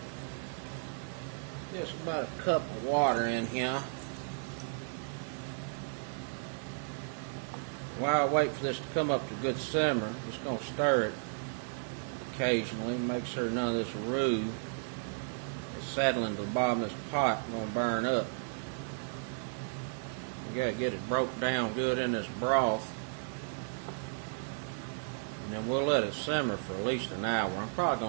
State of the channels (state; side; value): silent; left; 55 dB below the other